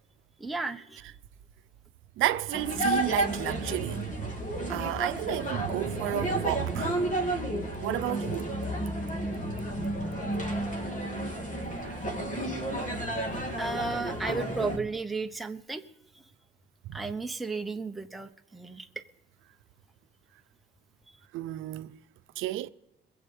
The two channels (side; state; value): left; quieter; 3.6 dB